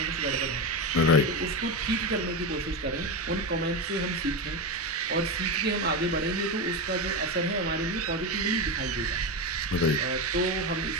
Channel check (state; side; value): normal; both; correlation 0.15